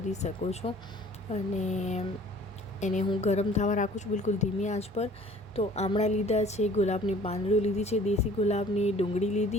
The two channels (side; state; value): both; normal; correlation 0.51